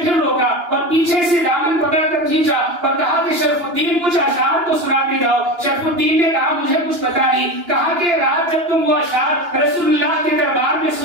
پھر روکا اور پیچھے سے دامن پکڑ کر کھینچا اور کہا کہ شرف الدین کچھ اشعار تو سنا کے جاؤ۔ شرف الدین نے کہا مجھے کچھ پتا نہیں۔ کہا کہ رات جب تم وہ اشعار رسول اللہ کے دربار میں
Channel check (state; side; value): late; left; 2.9 ms